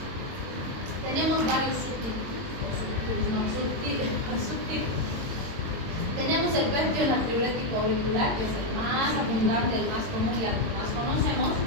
tenemos varios subtipos. Tenemos el péptido natriurético auricular, que es el más abundante, el más común y al que más conocemos.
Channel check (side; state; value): left; late; 22 ms